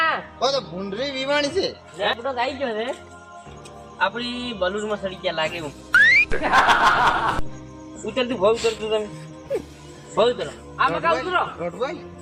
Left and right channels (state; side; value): identical; both; correlation 1.00